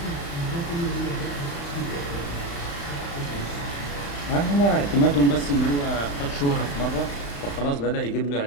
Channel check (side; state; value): right; late; 35 ms